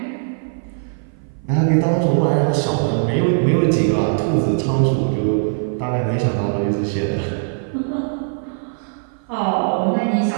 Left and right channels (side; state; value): left; silent; 56 dB below the other